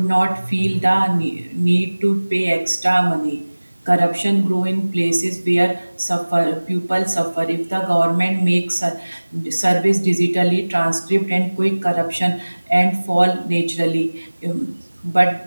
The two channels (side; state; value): both; inverted; correlation -1.00